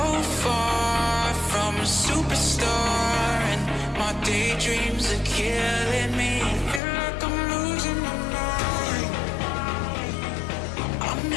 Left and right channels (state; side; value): drops out; right; at 6.8 s